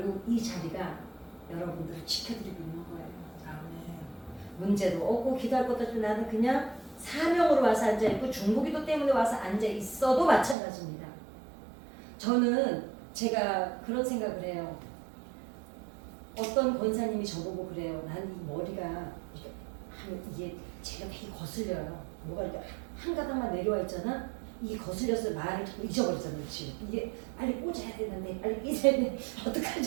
이 자리가 여러분들을 지켜드리고 있는 거예요. 문제도 없고 기도할 것도 없고 나는 그냥 사명으로 와서 앉아 있고 중보기도 때문에 와서 앉아 있어도 마찬가지입니다. 저는 제가 그런 생각을 해요. 어떤 권사님이 저보고 그래요. 난 이 머리가 이게 제가 되게 거슬려요. 뭐가 이렇게 한 가닥만 내려와 있잖아. 이게 거슬려서 말을 자꾸 잊어버리잖아. 이게 빨리 꽂아야 되는데 빨리 꽂아야 되는데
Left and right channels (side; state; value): left; drops out; at 10.6 s